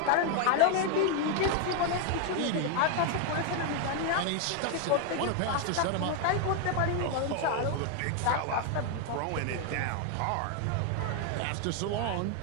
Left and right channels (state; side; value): different; both; correlation 0.01